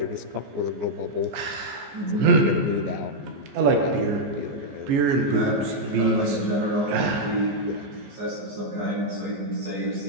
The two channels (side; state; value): left; late; 14 ms